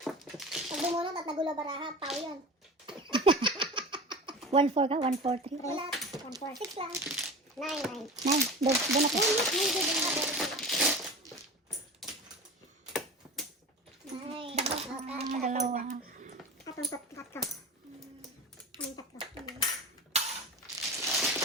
Pag bumunot at nagulo baraha, pao yun. 1-4 ka? 1-4-3? Wala. 1, 4, 6 lang. 9, 9. 9. Doon ako. Dalawa. Atong tatlo. Anong tatlo?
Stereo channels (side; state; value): both; normal; correlation 0.32